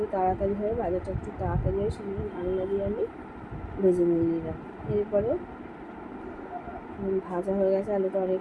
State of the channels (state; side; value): identical; both; correlation 1.00